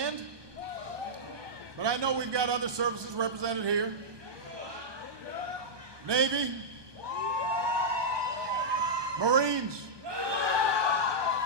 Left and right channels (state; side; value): late; left; 1.2 ms